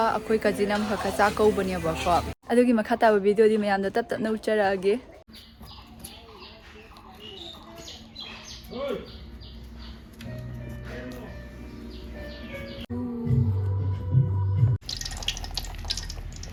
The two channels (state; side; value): identical; both; correlation 1.00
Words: akoi kajinam hakha chaka ubani bako. Adugi makhata video di mayam da tat na ucharage.